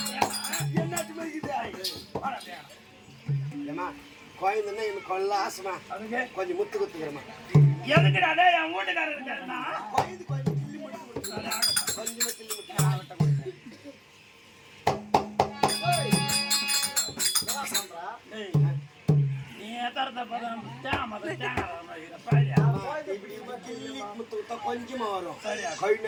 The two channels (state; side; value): identical; both; correlation 1.00